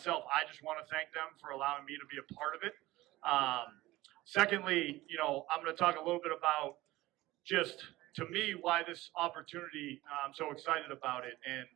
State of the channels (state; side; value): quieter; left; 18.0 dB